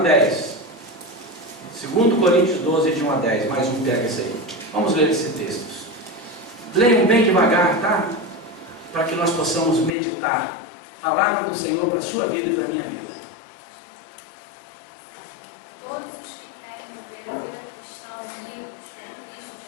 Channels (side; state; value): right; drops out; at 10.0 s